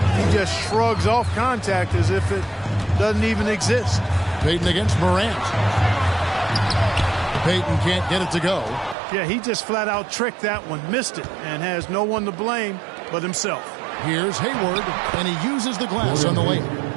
He just shrugs off contact as if it doesn't even exist. Payton against Morant. Payton can't get it to go. Yeah, he just flat out tricked that one, missed it, and has no one to blame but himself. Here's Hayward, and he uses the glass on the layup.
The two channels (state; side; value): drops out; left; at 9.0 s